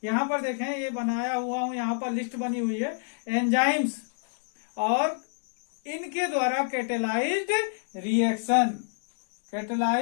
यहां पर देखें, ये बनाया हुआ हूं, यहां पर लिस्ट बनी हुई है एंजाइम्स और इनके द्वारा कैटेलाइज्ड रिएक्शन।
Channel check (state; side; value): silent; right; digital silence